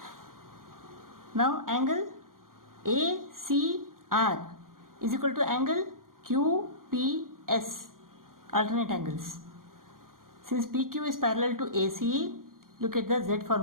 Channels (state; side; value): late; left; 0.91 ms